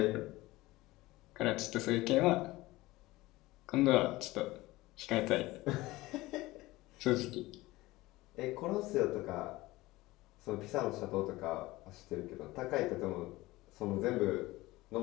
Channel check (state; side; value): quieter; right; 19.2 dB